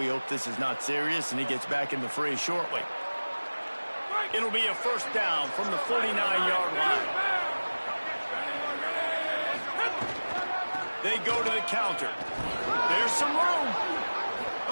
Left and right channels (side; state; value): both; inverted; correlation -1.00